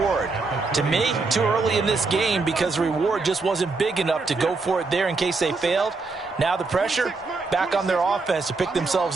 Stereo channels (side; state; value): left; quieter; 3.9 dB